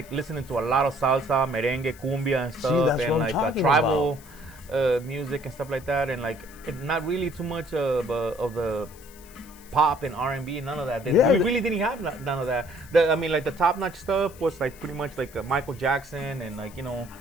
listening to a lot of salsa, merengue, cumbia, and stuff, that's and what I'm like talking tribal music and stuff like that, and like not really too much of the pop and R&B, none of that. Yeah, We really didn't have none of that. Like the top-notch stuff was like pretty much like Michael Jackson and like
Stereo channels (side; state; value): left; noise; hiss, 22 dB below the sound